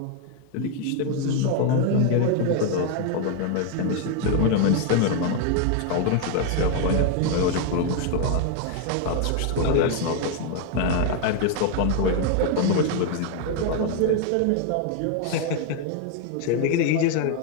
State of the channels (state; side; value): different; both; correlation 0.01